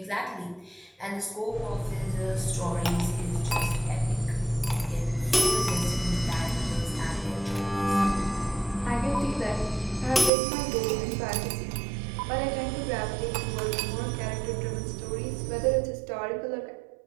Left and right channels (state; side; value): drops out; left; at 10.3 s